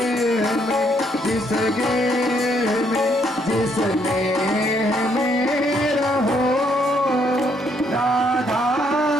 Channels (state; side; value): normal; both; correlation 0.71